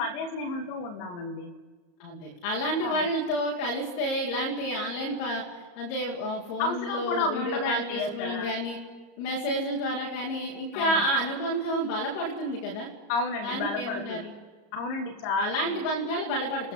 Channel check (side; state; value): right; late; 34 ms